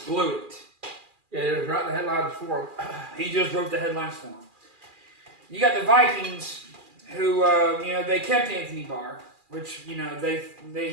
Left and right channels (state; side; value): late; left; 2.4 ms